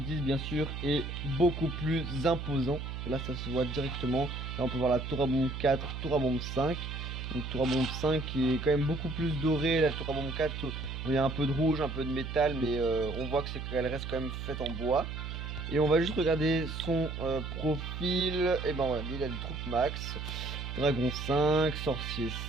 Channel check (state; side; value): noise; right; hum, 6 dB below the sound